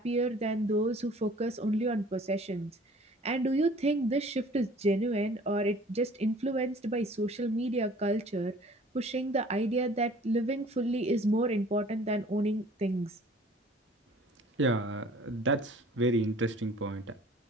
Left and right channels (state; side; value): normal; both; correlation 0.51